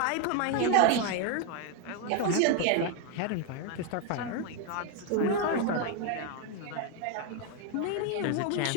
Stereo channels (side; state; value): both; different; correlation 0.01